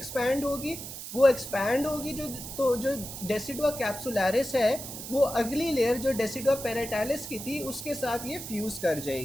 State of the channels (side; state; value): right; noise; hiss, 9 dB below the sound